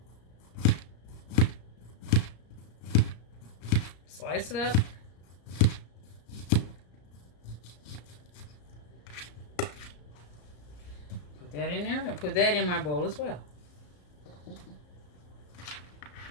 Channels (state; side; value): late; right; 34 ms